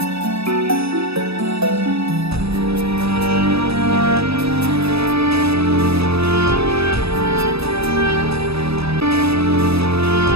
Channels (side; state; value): left; late; 0.78 ms